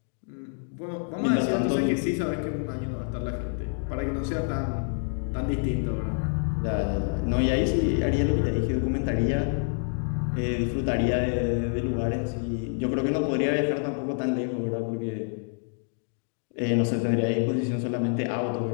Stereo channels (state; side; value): silent; right; 60 dB below the other